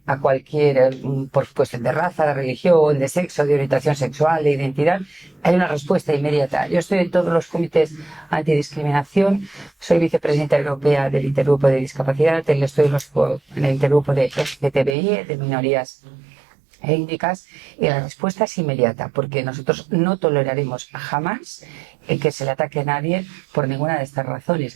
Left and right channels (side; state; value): left; drops out; at 15.0 s